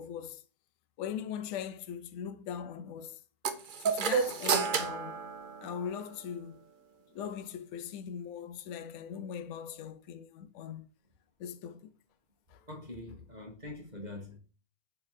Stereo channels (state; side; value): late; left; 2.3 ms